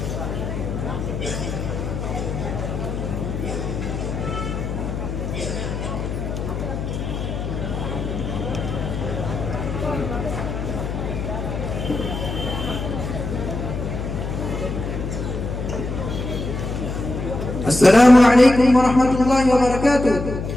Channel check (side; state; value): left; noise; hum, 4 dB below the sound